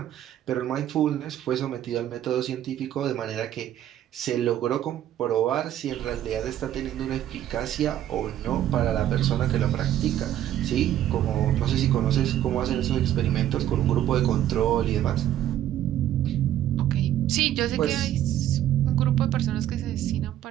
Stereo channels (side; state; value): left; quieter; 11.9 dB